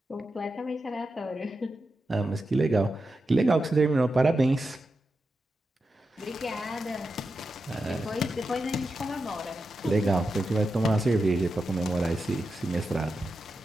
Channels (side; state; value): both; normal; correlation 0.89